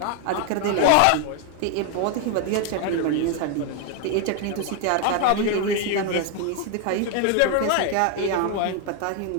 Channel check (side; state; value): both; different; correlation 0.01